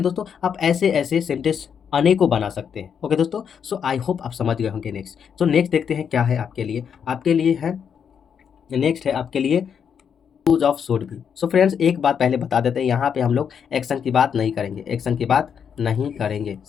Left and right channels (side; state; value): right; quieter; 7.4 dB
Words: आप ऐसे ऐसे सेंटेंस अनेकों बना सकते हैं। ओके दोस्तों, सो आई होप आप समझ गए होंगे। नेक्स्ट देखते हैं क्या है आपके लिए है, नेक्स्ट है आपके लिए यूज ऑफ शुड भी। सो फ्रेंड्स, एक बात पहले बता देते हैं, यहाँ पे हम लोग एक्शन की बात नहीं करेंगे,